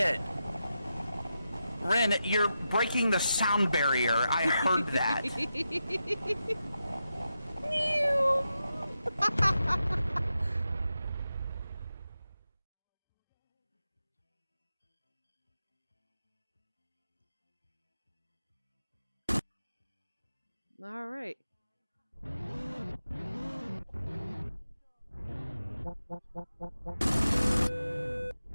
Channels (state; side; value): inverted; both; correlation -0.88